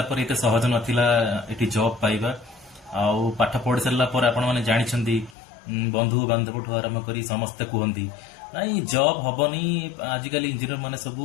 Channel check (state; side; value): drops out; right; at 5.4 s